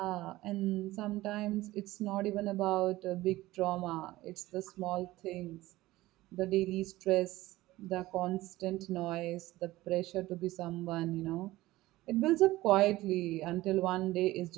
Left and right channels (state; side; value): quieter; left; 17.6 dB